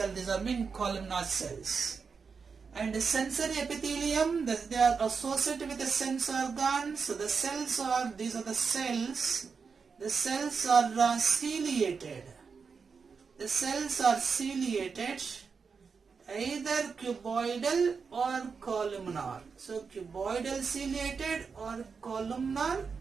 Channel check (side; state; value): left; quieter; 5.4 dB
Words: These are columnar cells. And the sensory epithelium, they are associated with the sense organs. So the cells are, these are the cells. The cells are ciliated. The cells are ciliated, either cuboidal or columnar. So cuboidal ciliated or columnar